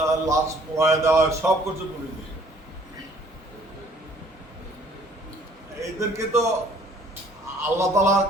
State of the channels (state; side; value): normal; both; correlation 0.58